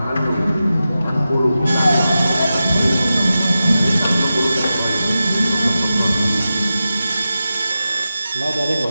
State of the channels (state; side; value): inverted; both; correlation -0.92